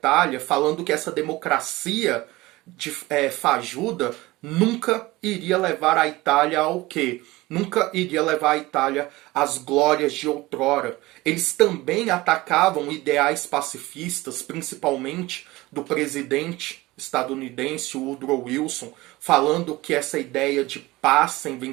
falando que essa democracia fajuda nunca iria levar a Itália ao quê? Nunca iria levar a Itália às glórias de outrora. Eles também atacavam ideais pacifistas, principalmente do presidente estadunidense Woodrow Wilson, falando que essa ideia de paz sem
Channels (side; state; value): left; quieter; 19.8 dB